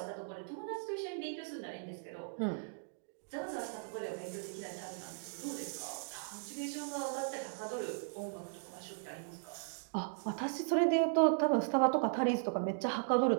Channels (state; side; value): silent; left; digital silence